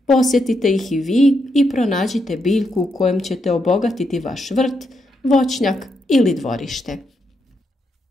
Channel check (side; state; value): both; normal; correlation 0.81